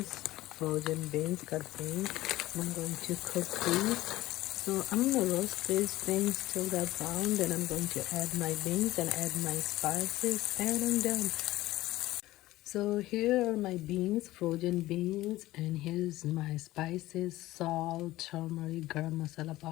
frozen beans, cut beans. I'm going to cook these. So I'm gonna roast these things till they're brown. Then I'm going to add my beans and add my spices, and I'm done. So here are my beans, frozen beans, and here's my spices: salt, turmeric, garam masala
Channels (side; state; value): right; quieter; 16.9 dB